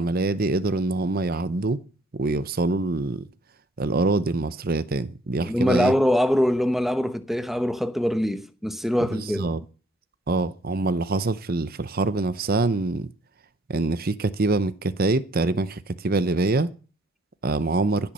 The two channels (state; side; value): normal; both; correlation 0.64